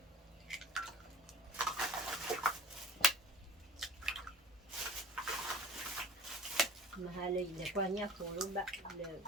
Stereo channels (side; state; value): both; normal; correlation 0.46